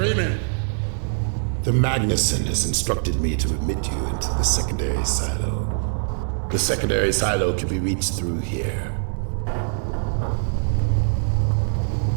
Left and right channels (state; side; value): silent; left; digital silence